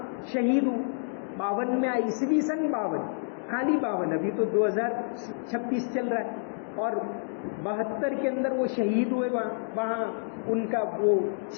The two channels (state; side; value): silent; right; digital silence